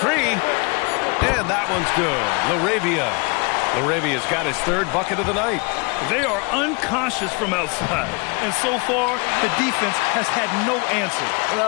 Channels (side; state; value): right; quieter; 30.8 dB